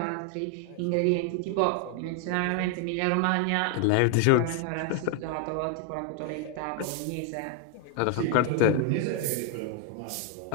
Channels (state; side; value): different; both; correlation 0.00